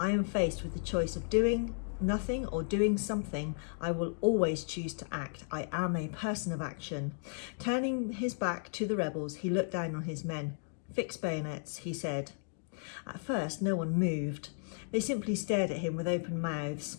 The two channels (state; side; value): silent; right; digital silence